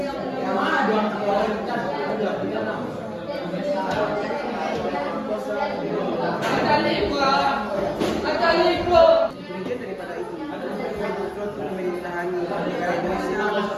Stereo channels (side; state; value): both; identical; correlation 1.00